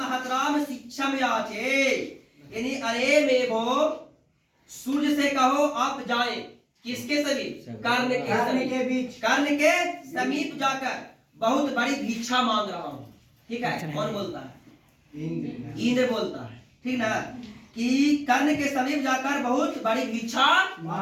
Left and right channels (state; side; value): identical; both; correlation 1.00